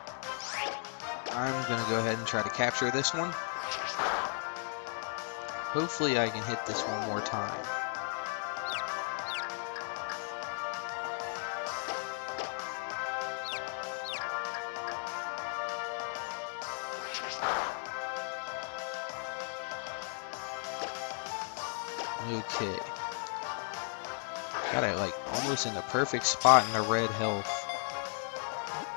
I'm going to go ahead and try to capture this one. Hopefully I can hit this one more time. Okay. Got it like almost in the perfect spot in the red health.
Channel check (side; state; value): right; silent; 54 dB below the other